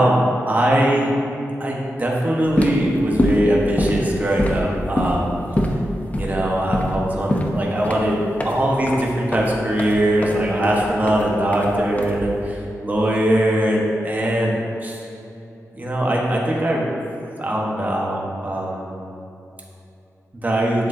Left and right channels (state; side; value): normal; both; correlation 0.88